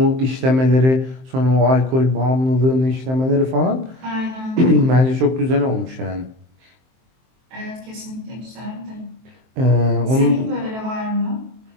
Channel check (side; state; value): left; late; 23 ms